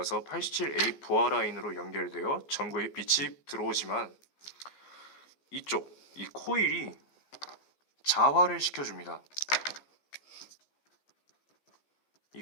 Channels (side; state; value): right; late; 14 ms